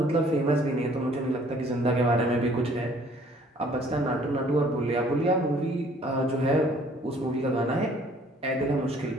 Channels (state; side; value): normal; both; correlation 0.58